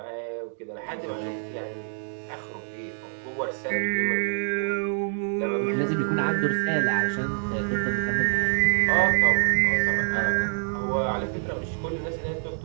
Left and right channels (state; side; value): silent; left; digital silence